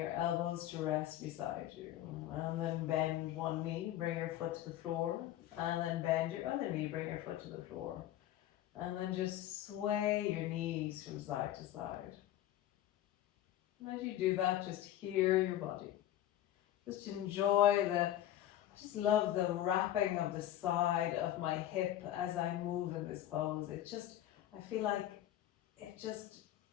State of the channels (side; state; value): right; quieter; 12.8 dB